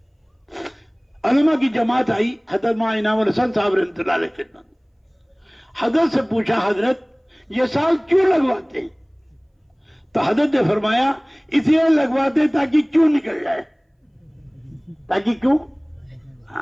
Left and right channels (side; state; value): both; identical; correlation 1.00